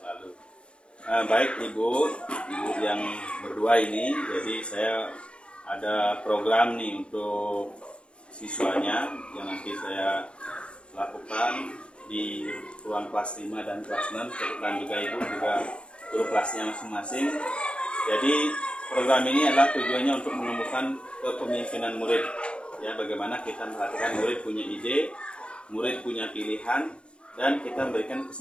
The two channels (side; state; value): right; late; 0.057 ms